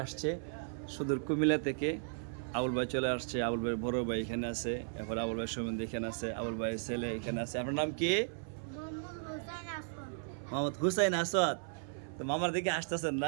আসছে, সুদূর কুমিল্লা থেকে আবুল ভাই চলে আসছে। আবুল ভাইয়ের বড় ভাই এখানে আছে, এরপর আবুল ভাই সম্বন্ধে এখানে আছে, আবুল ভাইয়ের ছেলে এখানে আছে। আপনার নাম কি? মোহাম্মদ হুসাইন আসওয়াদ। তো মামার দিকে আসতেছেন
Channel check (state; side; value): silent; left; 54 dB below the other